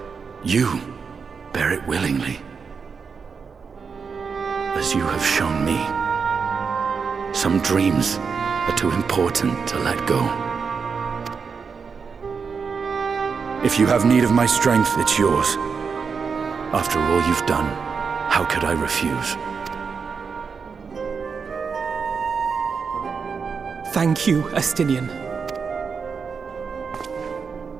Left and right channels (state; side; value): quieter; left; 5.6 dB